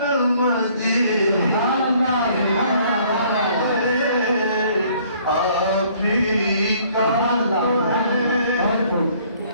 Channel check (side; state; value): both; inverted; correlation -0.60